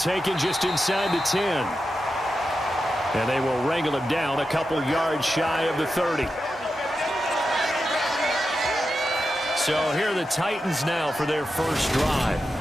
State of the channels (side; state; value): both; normal; correlation 0.89